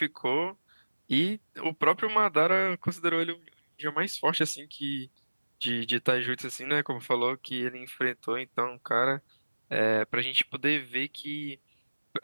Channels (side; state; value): both; inverted; correlation -1.00